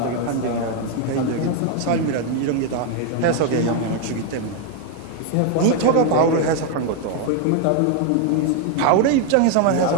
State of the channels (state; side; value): different; both; correlation 0.01